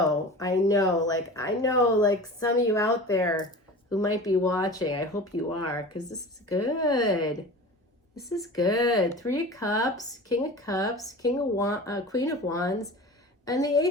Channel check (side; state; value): both; normal; correlation 0.35